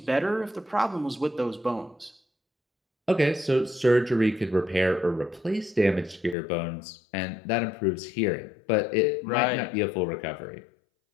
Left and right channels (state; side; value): drops out; right; at 6.4 s